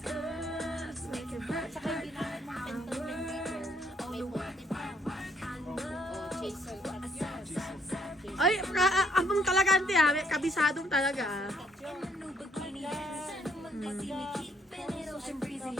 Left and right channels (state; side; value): normal; both; correlation 0.69